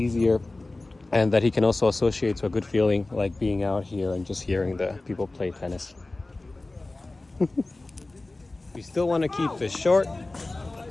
and that he can also associate to a good feeling, like being out here and just hearing the people play tennis. We still want to keep this short,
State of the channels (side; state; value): right; quieter; 3.0 dB